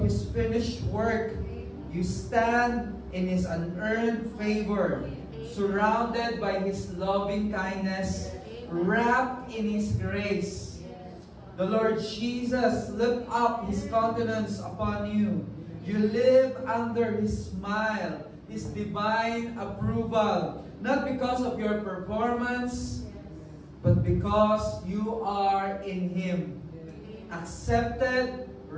His finished work, you stand in His unearned favor, surrounded by His loving kindness, wrapped in His grace. The Lord Jesus lift up His countenance upon you. You live under His smile, His divine approval, not because of your performance, but because you are in Him, accepted,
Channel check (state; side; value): identical; both; correlation 1.00